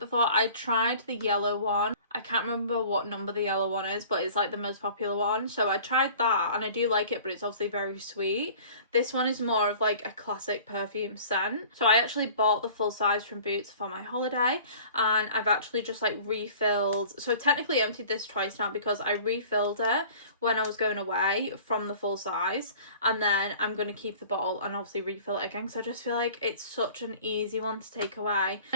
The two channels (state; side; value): inverted; both; correlation -0.46